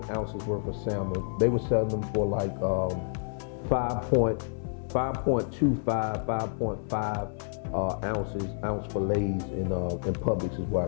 ounces worth of salmon. They were selling them for like 5.25, 5.5 ounce fillets in Publix is where I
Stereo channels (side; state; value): right; silent; 58 dB below the other